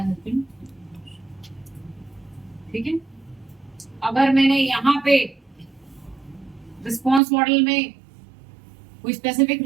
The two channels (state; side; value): drops out; left; at 7.2 s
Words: हैज बीन, ठीक है। अगर मैंने यहाँ पे रिस्पॉन्स मॉडल में कोई स्पेसिफिक